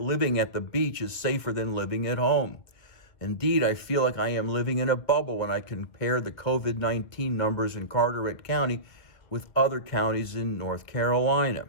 living at the beach is safer than living at home. Indeed, I feel like I am living in a bubble when I compare the COVID-19 numbers in Carteret County with other counties in North Carolina.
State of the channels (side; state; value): right; late; 2.1 ms